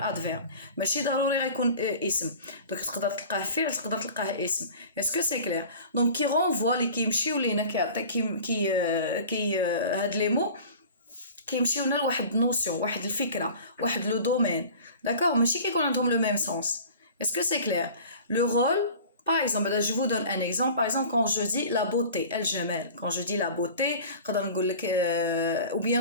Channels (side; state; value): both; inverted; correlation -0.42